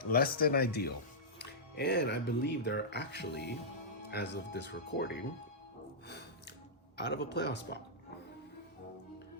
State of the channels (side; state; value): both; normal; correlation -0.13